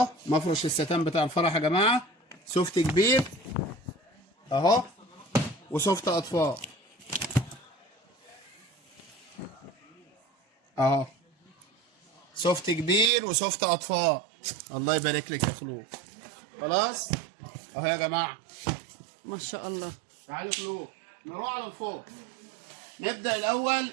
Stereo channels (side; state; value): left; drops out; at 13.1 s